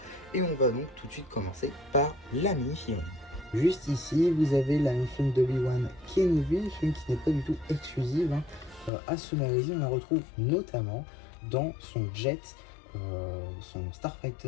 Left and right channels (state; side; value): drops out; right; at 8.9 s